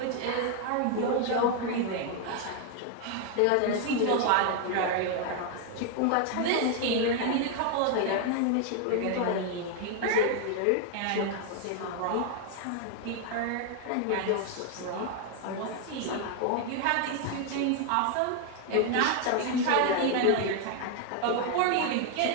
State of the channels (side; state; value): both; different; correlation 0.00